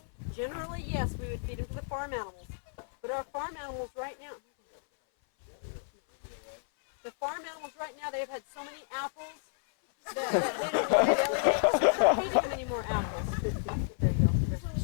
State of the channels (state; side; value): silent; right; 57 dB below the other